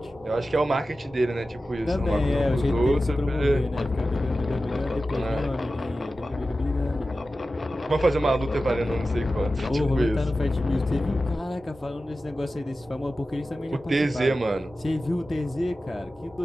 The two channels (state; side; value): normal; both; correlation 0.94